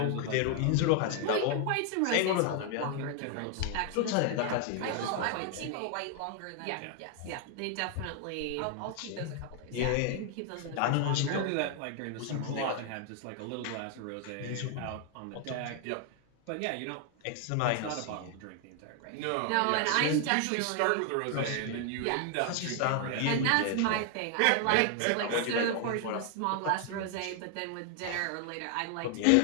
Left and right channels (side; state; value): both; different; correlation 0.00